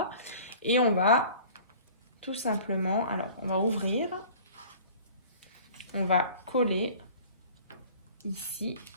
Et on va tout simplement, alors, on va ouvrir. On va coller ici.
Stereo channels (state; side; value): inverted; both; correlation -0.46